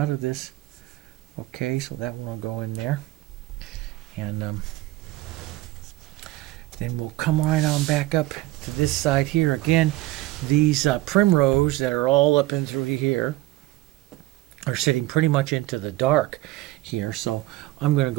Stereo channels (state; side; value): quieter; left; 17.5 dB